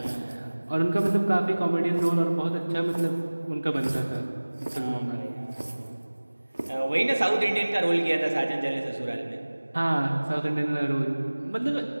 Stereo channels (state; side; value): inverted; both; correlation -1.00